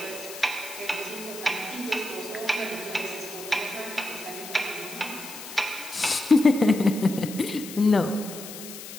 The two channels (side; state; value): left; noise; hiss, 12 dB below the sound